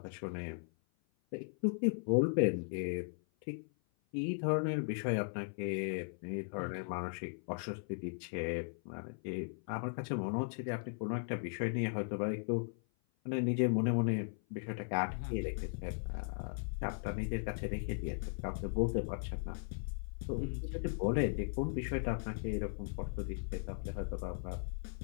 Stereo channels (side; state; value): right; silent; 53 dB below the other